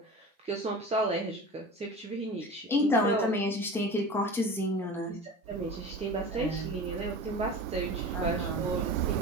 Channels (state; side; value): normal; both; correlation 0.34